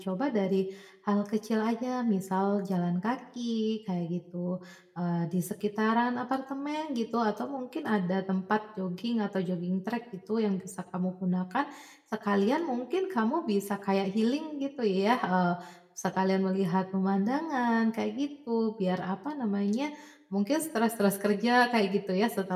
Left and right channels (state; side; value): identical; both; correlation 1.00